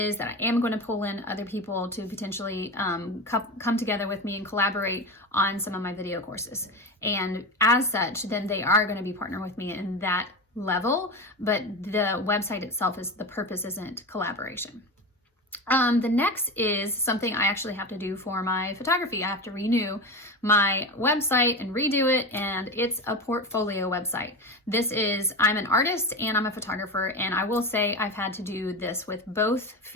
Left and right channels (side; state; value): both; normal; correlation 0.22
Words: that I am going to pull in other people to potentially come together with me and collaborate on some of my video courses. And as such, then they are going to be partnering with me in that level, but the website itself the purpose isn't collaboration. The next is something I actually have to do for my photography. I have to renew my website and redo it, and it's a portfolio website. I'm an artist and I'm a photographer, and I will say I've had to do this with both